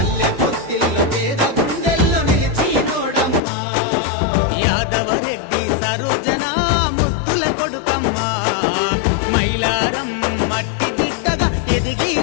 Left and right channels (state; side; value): drops out; right; at 3.4 s